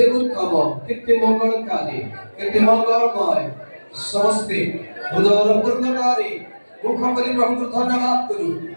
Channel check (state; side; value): inverted; both; correlation -1.00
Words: উত্তম, কেতে মঙ্গলকারী, কেতে মঙ্গলময়, সমস্ত উদর পূর্ণকারী। মুখ করে প্রভুকে ধন্যবাদ করো,